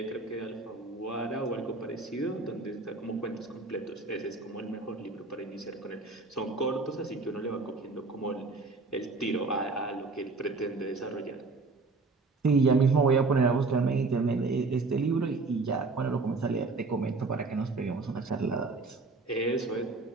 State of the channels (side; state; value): left; quieter; 3.8 dB